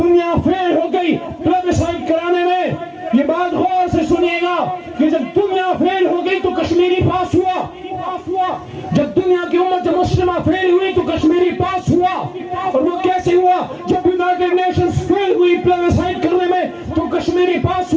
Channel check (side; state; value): both; identical; correlation 1.00